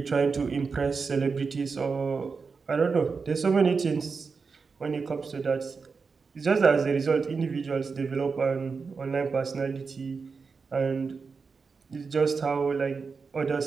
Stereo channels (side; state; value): left; quieter; 5.0 dB